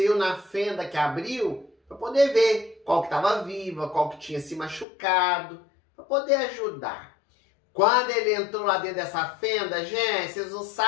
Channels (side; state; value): right; drops out; at 4.9 s